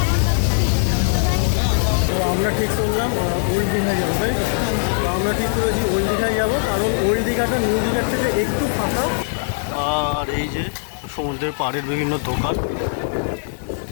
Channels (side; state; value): right; silent; digital silence